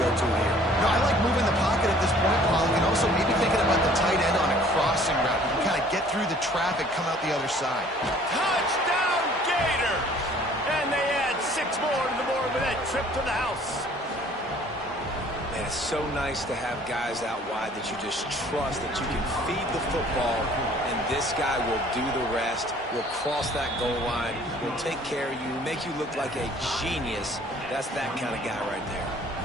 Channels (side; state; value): both; normal; correlation 0.55